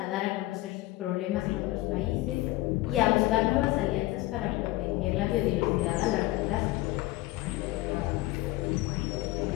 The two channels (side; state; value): right; quieter; 18.1 dB